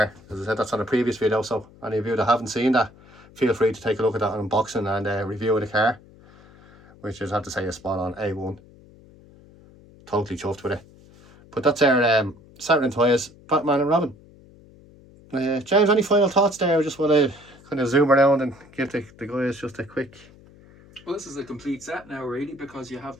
As I said, that's on a previous video, so any of you that haven't seen that, feel free to take a look at that unboxing and review of the car, which is, I have to say, is spot on, A1. Totally chuffed with it. But that's our Saturn Toys Batman and Robin. James, any final thoughts there? I just want to kind of zoom around and give the guys just a quick. Well, this is a complete set now, really, because you have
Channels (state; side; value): noise; left; hum, 24 dB below the sound